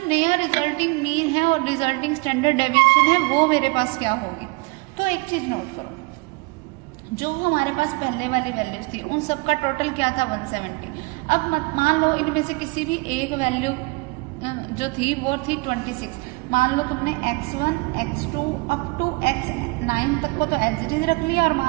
नया रिजल्टिंग मीन है और रिजल्टिंग स्टैंडर्ड डेविएशन है वो मेरे पास क्या होगी। तो एक चीज नोट करो, जो हमारे पास पहले वाली वैल्यूज थी उन सब का टोटल क्या था 170। अब मान लो इनमें से किसी भी एक वैल्यू जो थी वो थी 26। मान लो तुमने x1 x2 up to x9 तक को तो एज इट इज रख लिया, और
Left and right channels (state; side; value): quieter; left; 27.4 dB